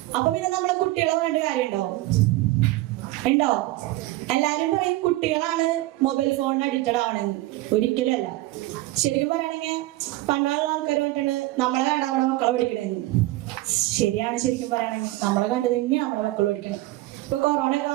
അപ്പൊ പിന്നെ നമ്മളെ കുട്ടികളെ പറഞ്ഞിട്ട് കാര്യമുണ്ടോ? ഉണ്ടോ? എല്ലാരും പറയും കുട്ടികളാണ് മൊബൈൽ ഫോണിന് അഡിക്റ്റഡ് ആവണെന്ന്. ഒരിക്കലും അല്ല. ശരിക്കും പറയുകയാണെങ്കിൽ പണ്ടുള്ള ആൾക്കാർ പറഞ്ഞിട്ടുണ്ട് നമ്മളെ കണ്ട നമ്മുടെ മക്കളെ പഠിക്കണെന്ന്. ശരിയാണ്. ശരിക്കും പറയുകയാണെങ്കിൽ നമ്മളെ കണ്ട് തന്നെയാണ് നമ്മുടെ മക്കൾ പഠിക്കണം. ഇപ്പൊ കൊറോണ ഒക്കെ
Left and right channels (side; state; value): left; quieter; 18.2 dB